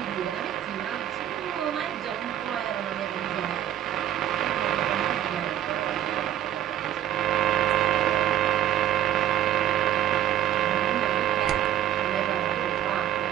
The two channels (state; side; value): quieter; left; 11.4 dB